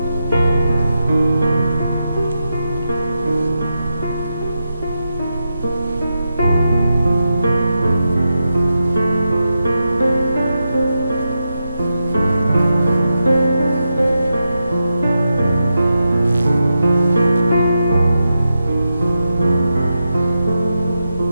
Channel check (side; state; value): both; inverted; correlation -0.88